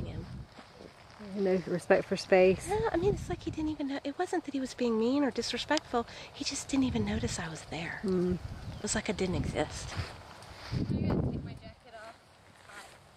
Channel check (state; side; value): identical; both; correlation 1.00